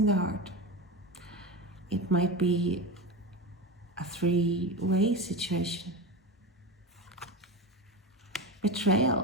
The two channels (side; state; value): both; normal; correlation 0.22